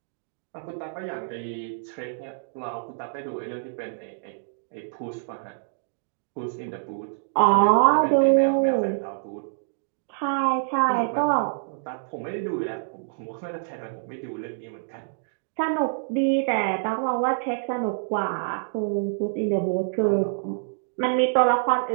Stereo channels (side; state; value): left; silent; digital silence